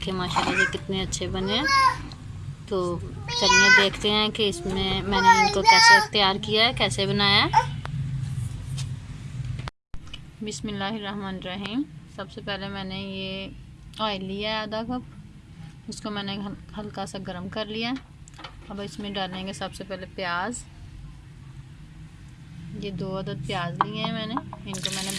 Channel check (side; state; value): both; identical; correlation 1.00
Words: माशाल्लाह से कितने अच्छे बने हैं। तो चलिए देखते हैं कि इसमें मैंने इनको कैसे तैयार किया है, कैसे बनाया है। बिस्मिल्लाहिर्रहमानिर्रहीम। सबसे पहले मैंने ये ऑयल लिया है आधा कप, उसको मैंने हल्का सा गर्म कर लिया। अब इसमें डालेंगे सबसे पहले प्याज। ये 2 अदद प्याज लिए हैं मैंने, इनको मैंने